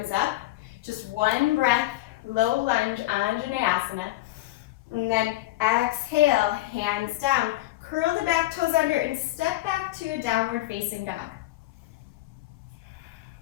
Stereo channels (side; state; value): right; quieter; 17.0 dB